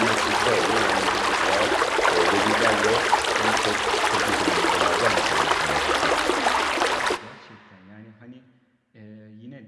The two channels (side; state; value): both; identical; correlation 1.00